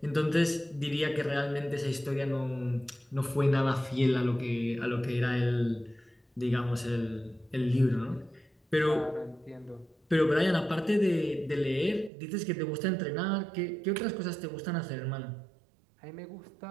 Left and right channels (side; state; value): left; drops out; at 12.1 s